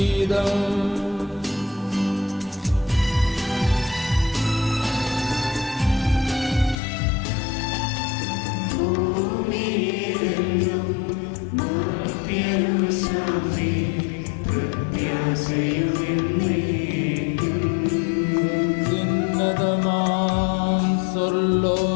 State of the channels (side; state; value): right; drops out; at 6.8 s